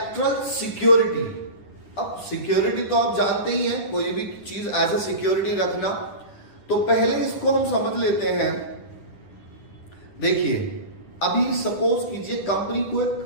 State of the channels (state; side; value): late; right; 10 ms